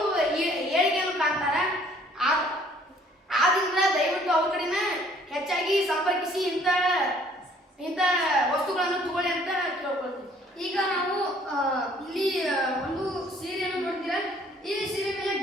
ಏಳಿಗೆಯನ್ನು ಕಾಣ್ತಾರೆ. ಆದ್ರಿಂದ ದಯವಿಟ್ಟು ಅವ್ರ ಕಡೆನ ಹೆಚ್ಚಾಗಿ ಸಂಪರ್ಕಿಸಿ ಇಂಥ ವಸ್ತುಗಳನ್ನು ತಗೊಳ್ಳಿ ಅಂತ ಕೇಳ್ಕೊಳ್ತೀವಿ. ಈಗ ನಾವು ಇಲ್ಲಿ ಒಂದು ಸೀರೆಯನ್ನು ನೋಡ್ತೀರಾ. ಈ ಸೀರೆ ಮೇಲೆ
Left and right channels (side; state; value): both; normal; correlation 0.59